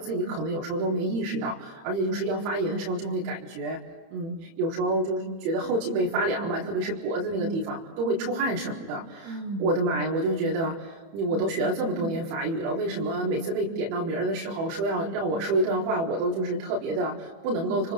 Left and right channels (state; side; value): late; left; 30 ms